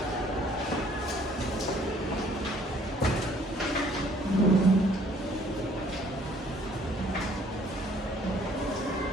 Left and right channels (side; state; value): both; normal; correlation 0.59